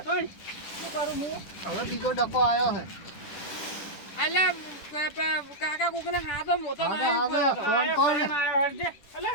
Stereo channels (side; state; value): right; late; 10 ms